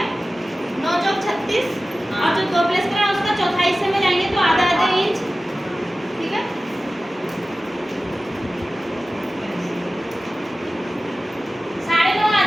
9 चौक 36 और जो 2 प्लस करा उसका चौथाई हिस्से में जाएंगे तो आधा आधा इंच, ठीक है। साढ़े 9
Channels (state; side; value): normal; both; correlation 0.96